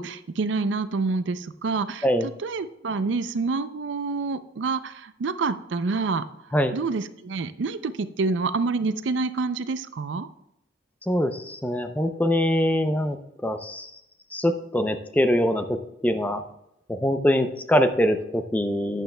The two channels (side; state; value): both; normal; correlation 0.64